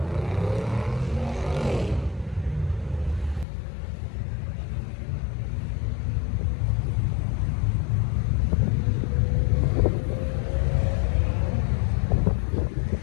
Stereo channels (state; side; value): drops out; right; at 3.5 s